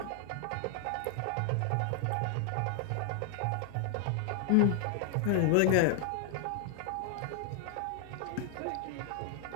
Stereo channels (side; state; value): both; different; correlation 0.00